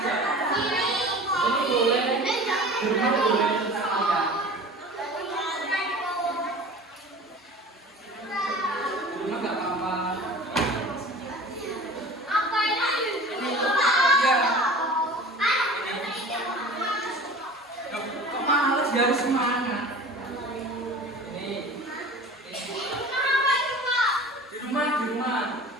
Ini boleh, cuma boleh tentang kalian. Cuma nggak apa-apa. Dia harus semangat. Ini. Di rumah.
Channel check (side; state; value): both; normal; correlation 0.40